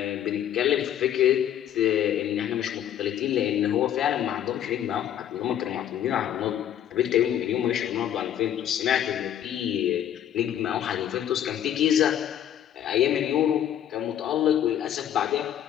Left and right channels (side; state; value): right; quieter; 10.5 dB